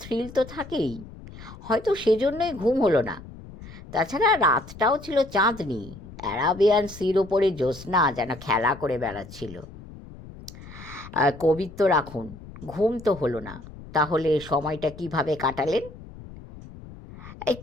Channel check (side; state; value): left; noise; rumble, 16 dB below the sound